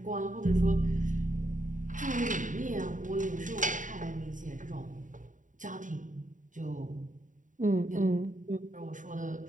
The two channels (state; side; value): late; left; 0.37 ms